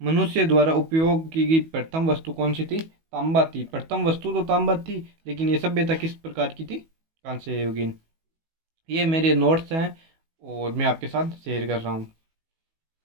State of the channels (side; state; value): left; late; 19 ms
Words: मनुष्य द्वारा उपयोग की गई प्रथम वस्तु कौन सी थी? तांबा थी। प्रथम वस्तु तो तांबा थी, लेकिन ये सभ्यता किस प्रकार की थी? कांस्य युगीन। ये मेरे नोट्स हैं और मैं आपके साथ शेयर कर रहा हूँ।